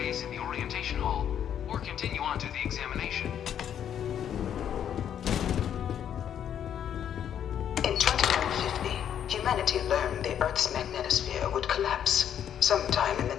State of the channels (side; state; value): right; quieter; 9.4 dB